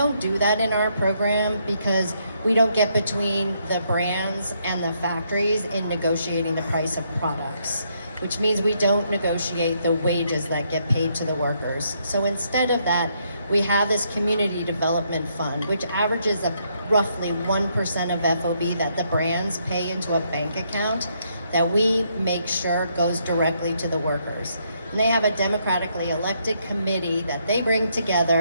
do that in our program because we don't get between the brands and the factories in negotiating the price of products, which means we don't negotiate the wages that get paid to the workers. So instead of that, we have this community development fund, which averages roughly 1% of FOB that the brands pay into a bank account that we make sure goes directly to the workers. And they have a democratically elected committee that they bring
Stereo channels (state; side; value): inverted; both; correlation -0.74